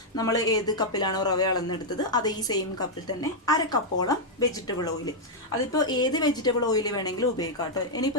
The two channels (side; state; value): both; normal; correlation -0.03